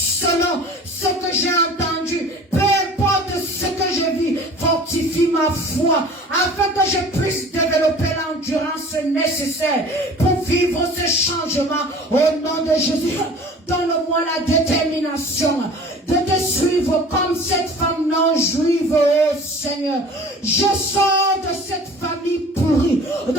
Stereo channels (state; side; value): normal; both; correlation 0.44